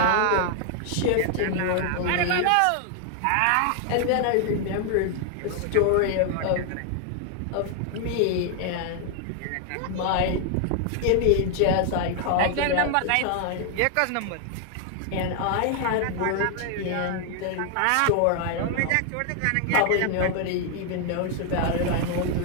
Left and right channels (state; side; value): different; both; correlation 0.00